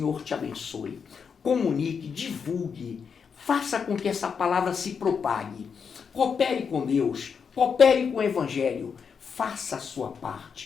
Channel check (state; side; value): quieter; right; 6.3 dB